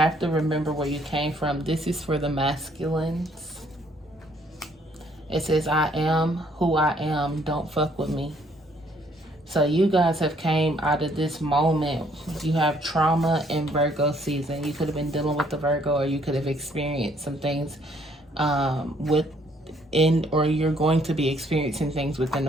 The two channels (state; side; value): normal; both; correlation 0.65